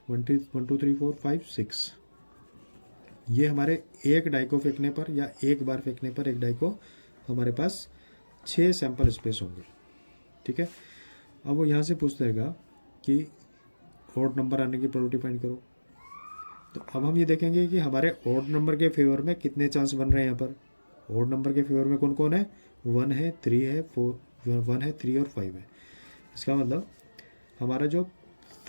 1 2 3 4 5 6। ये हमारे एक डाई को फेंकने पर या एक बार फेंकने पर एक डाई को हमारे पास 6 सैम्पल स्पेस होंगे। ठीक है, अब वो यहाँ से पूछ देगा कि ऑड नंबर आने की प्रोबेबिलिटी फाइंड करो। तो अब हम ये देखेंगे कि हमारे ऑड नंबर के फेवर में कितने चांस बन रहे हैं। यहाँ पर ऑड नंबर के फेवर में कौन कौन है, 1 है, 3 है, 1 है, 3 और 5 है। इसका मतलब हमारा जो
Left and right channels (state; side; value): inverted; both; correlation -1.00